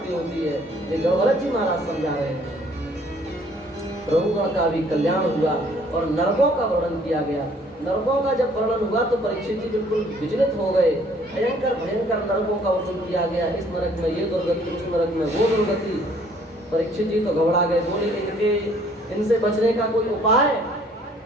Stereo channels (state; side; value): normal; both; correlation 0.60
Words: होती है। ये गौरव जी महाराज समझा रहे हैं। प्रभुगण का भी कल्याण हुआ और नरकों का वर्णन किया गया। नरकों का जब वर्णन हुआ तो परीक्षित जी बिल्कुल विचलित हो गए। भयंकर भयंकर नरकों का वर्णन किया गया। इस नरक में ये दुर्गति, उस नरक में वो दुर्गति। परीक्षित जी तो घबरा गए, बोले इनसे बचने का कोई उपाय?